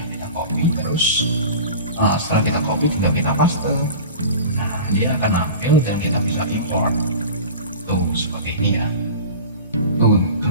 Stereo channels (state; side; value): inverted; both; correlation -0.35